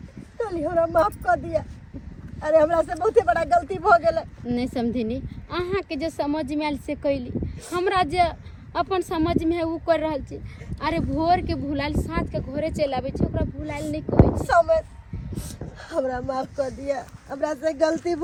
चली हमरा माफ कर दिया। अरे हमरा से बहुते बड़ा गलती भ गेलै। नहीं समझिनी, अहाँ के जो समझ में आयल से कैली, हमरा जे अपन समझ में है वो कर रहल छी। अरे भोर के भुलाइल साँझ के घरे चलि आबै छै, ओकरा भुलाइल नहीं कहै छै। समझ हमरा माफ कर दिया, हमरा से गलती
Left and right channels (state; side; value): identical; both; correlation 1.00